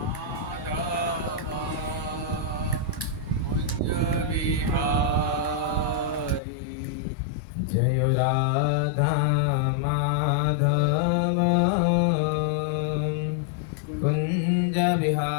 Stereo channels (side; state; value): right; drops out; at 6.4 s